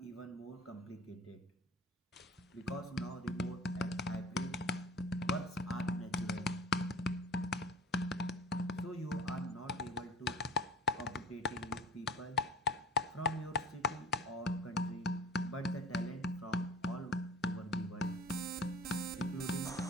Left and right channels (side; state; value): both; normal; correlation 0.42